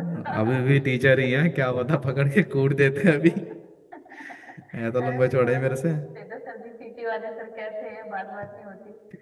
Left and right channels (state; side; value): identical; both; correlation 1.00